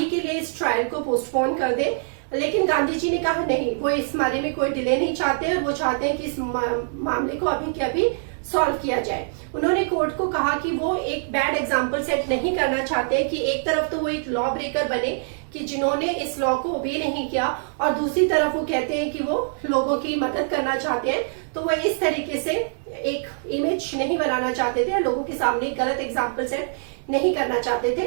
के लिए इस ट्रायल को पोस्टपोन कर दे, लेकिन गांधी जी ने कहा नहीं, वो इस बारे में कोई डिले नहीं चाहते और वो चाहते हैं कि इस मामले को अभी के अभी सॉल्व किया जाए। उन्होंने कोर्ट को कहा कि वो एक बैड एग्जाम्पल सेट नहीं करना चाहते कि एक तरफ तो वो एक लॉ ब्रेकर बने कि जिन्होंने इस लॉ को ओबे नहीं किया, और दूसरी तरफ वो कहते हैं कि वो लोगों की मदद करना चाहते हैं। तो वो इस तरीके से एक इमेज नहीं बनाना चाहते थे, लोगों के सामने एक गलत एग्जाम्पल सेट नहीं करना चाहते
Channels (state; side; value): silent; left; digital silence